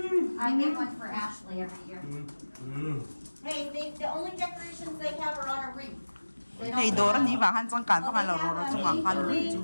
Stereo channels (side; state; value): both; inverted; correlation -1.00